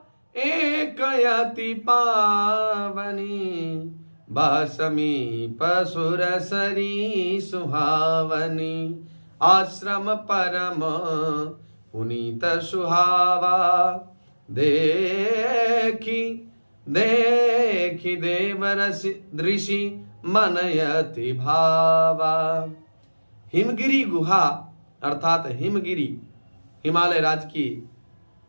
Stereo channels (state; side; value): inverted; both; correlation -1.00